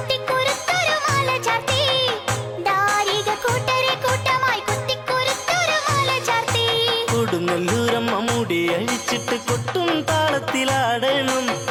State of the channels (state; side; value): identical; both; correlation 1.00